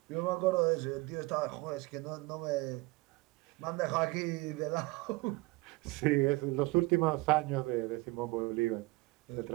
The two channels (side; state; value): left; quieter; 22.8 dB